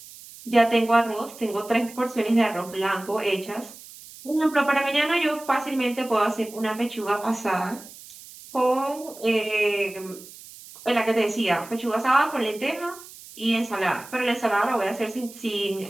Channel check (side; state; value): right; noise; hiss, 18 dB below the sound